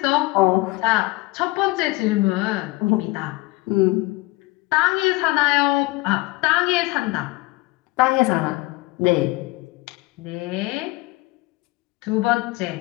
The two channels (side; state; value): right; quieter; 21.6 dB